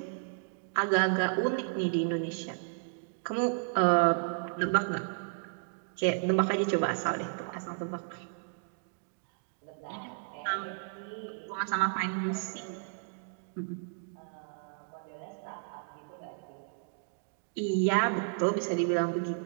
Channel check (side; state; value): left; silent; digital silence